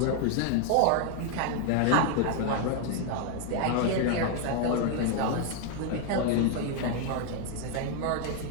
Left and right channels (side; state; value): both; different; correlation 0.00